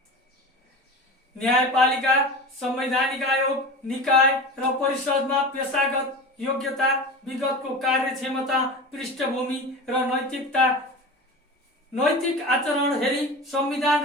न्यायपालिका, संवैधानिक आयोग, निकाय र परिषदमा पेशागत योग्यता, विगतको कार्यक्षमता, पृष्ठभूमि र नैतिक आचरण हेरी संविधान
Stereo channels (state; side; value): normal; both; correlation 0.31